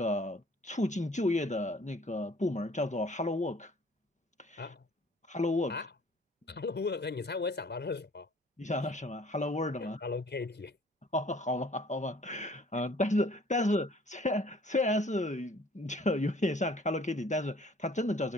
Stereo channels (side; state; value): both; normal; correlation 0.55